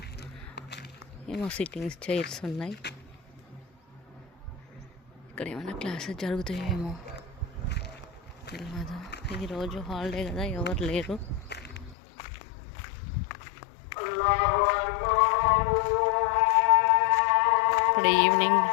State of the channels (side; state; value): right; drops out; at 12.0 s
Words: ఏమో సిట్టింగ్స్ చైర్స్ ఉన్నాయి. ఇక్కడ ఏమైనా క్లాసెస్ జరుగుతాయేమో తెలియదు. ఈరోజు హాలిడే కదా, ఎవరు లేరు. ఇప్పుడు ఈవినింగ్